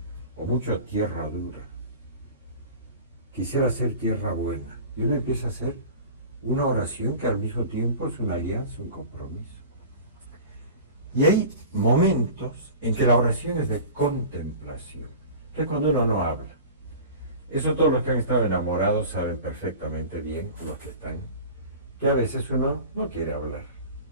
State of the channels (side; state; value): both; inverted; correlation -0.37